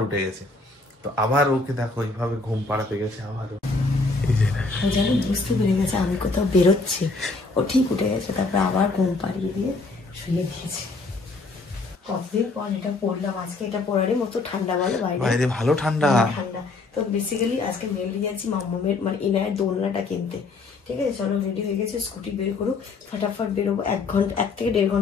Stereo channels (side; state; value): right; quieter; 3.6 dB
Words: উঠে গেছে। তো আবার ওকে দেখো এইভাবে ঘুম পাড়াতে গেছে আবারও। ও যেন বুঝতে পেরে গেছে আমি কোথাও বেরোচ্ছি, ও ঠিক উঠে গেছে, তারপর আবার ঘুম পাড়িয়ে দিয়ে শুয়ে দিয়েছে। কতদিন পর এটা পড়লাম আজকে, এটা পড়ারই মতো ঠান্ডা, বলে বাইরে ভালো ঠান্ডা। তো বেসিক্যালি আজকে মেনলি যাচ্ছি মাম্মামের মানে ইনায়ের দোলনাটা কিনতে। ঠিক আছে, চলো রেডি হয়ে গেছে, স্কুটি বের করুক, ফটাফট বেরোবো। 1 থেকে 1.5